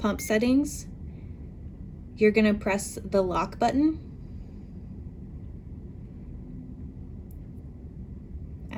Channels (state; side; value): identical; both; correlation 1.00